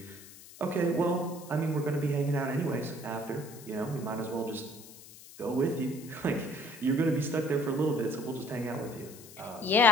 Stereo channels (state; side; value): noise; left; hiss, 18 dB below the sound